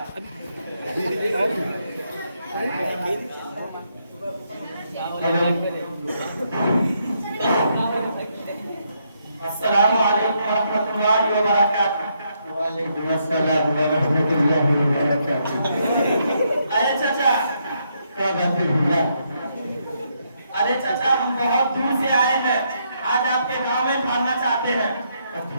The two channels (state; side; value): inverted; both; correlation -0.76